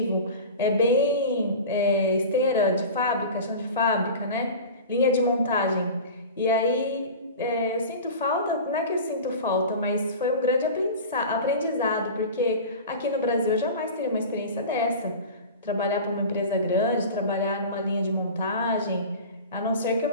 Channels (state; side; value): inverted; both; correlation -0.34